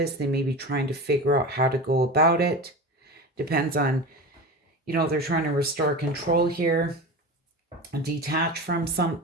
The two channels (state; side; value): normal; both; correlation 0.28